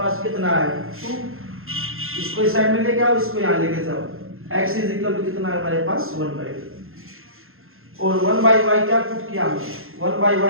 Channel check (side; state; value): left; late; 0.61 ms